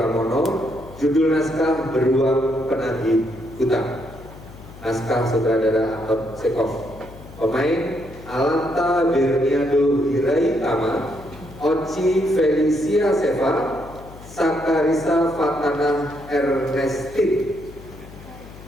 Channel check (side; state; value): left; noise; hum, 18 dB below the sound